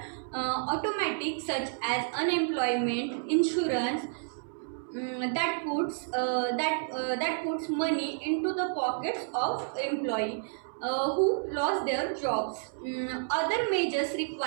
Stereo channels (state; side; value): silent; left; 58 dB below the other